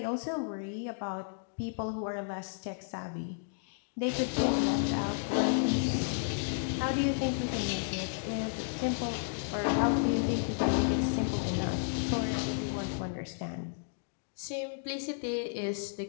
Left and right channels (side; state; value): right; silent; digital silence